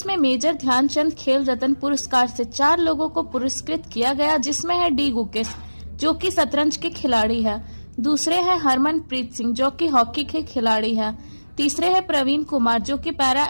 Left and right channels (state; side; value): inverted; both; correlation -1.00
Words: में मेजर ध्यानचंद खेल रत्न पुरस्कार से 4 लोगों को पुरस्कृत किया गया, जिसमें है डी गुकेश जो कि शतरंज के खिलाड़ी है, दूसरे है हरमनप्रीत सिंह जो कि हॉकी के खिलाड़ी है, तीसरे है प्रवीण कुमार जो कि पैरा